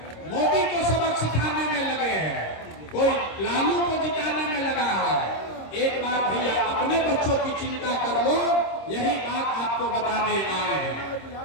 मोदी को सबक सिखाने में लगे हैं, कोई लालू को जिताने में लगा है। एक बार भैया अपने बच्चों की चिंता कर लो, यही बात आपको बताने आए हैं।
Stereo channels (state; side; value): late; right; 26 ms